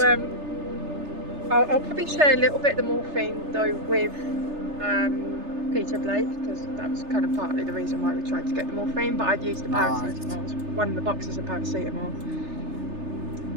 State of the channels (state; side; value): late; left; 3.3 ms